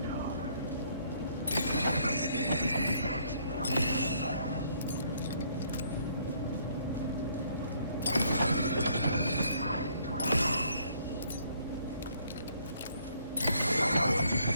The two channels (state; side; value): inverted; both; correlation -0.66